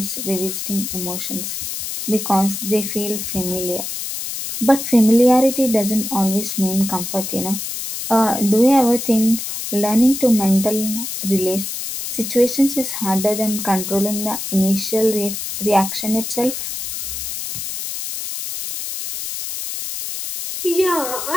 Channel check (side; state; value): left; noise; hiss, 6 dB below the sound